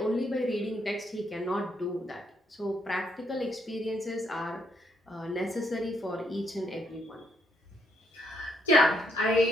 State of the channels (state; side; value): normal; both; correlation 0.74